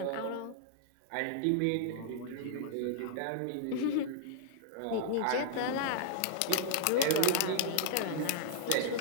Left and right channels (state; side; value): different; both; correlation -0.01